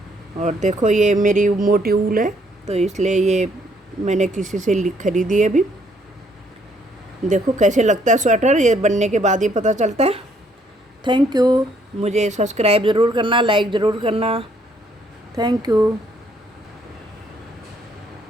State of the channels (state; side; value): normal; both; correlation 0.67